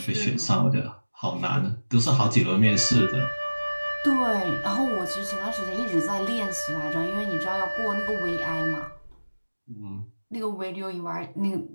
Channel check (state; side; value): inverted; both; correlation -1.00